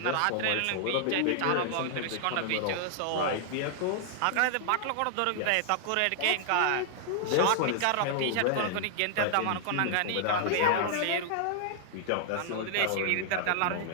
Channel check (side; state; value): both; different; correlation -0.01